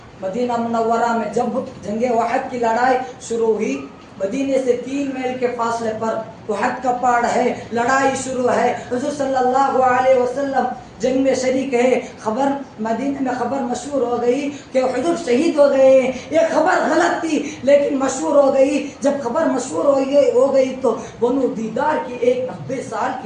مدینہ منورہ میں جب جنگ احد کی لڑائی شروع ہوئی، مدینے سے 3 میل کے فاصلے پر احد کا پہاڑ ہے، لڑائی شروع ہے، حضور صلی اللہ علیہ وسلم جنگ میں شریک ہے۔ خبر مدینہ میں خبر مشہور ہو گئی کہ حضور شہید ہو گئے ہیں۔ یہ خبر غلط تھی لیکن مشہور ہو گئی۔ جب خبر مشہور ہو گئی تو بنو دیدار کی ایک 90 سال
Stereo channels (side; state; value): both; identical; correlation 1.00